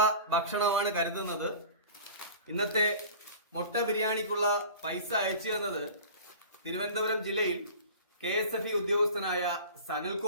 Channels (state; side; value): inverted; both; correlation -0.39